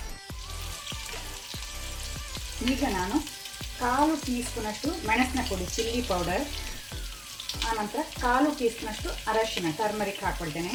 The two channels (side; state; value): both; identical; correlation 1.00